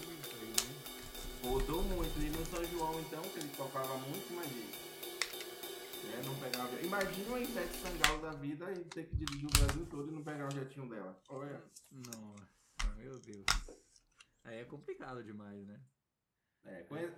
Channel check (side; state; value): both; identical; correlation 1.00